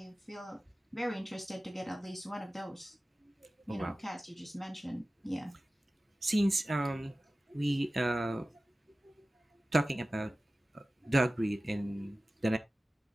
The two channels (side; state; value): both; normal; correlation 0.96